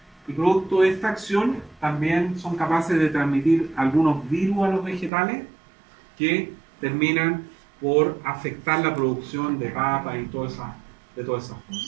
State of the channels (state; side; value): drops out; left; at 5.1 s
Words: y producto de esta acción también son capaces de transmitir algunos virus a los vegetales que terminan por afectar la producción de papas y de todas esas cosas.